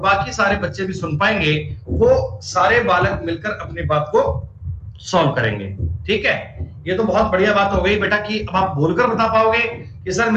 सारे बच्चे भी सुन पाएंगे। वो सारे बालक मिलकर अपनी बात को सॉल्व करेंगे। ठीक है, ये तो बहुत बढ़िया बात हो गई बेटा कि अब आप बोलकर बता पाओगे कि सर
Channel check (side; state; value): both; identical; correlation 1.00